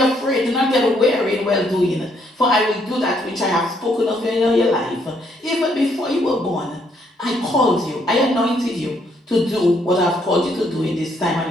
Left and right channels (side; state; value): both; normal; correlation 0.71